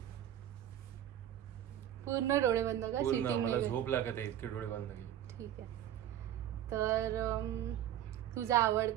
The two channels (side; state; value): left; quieter; 11.4 dB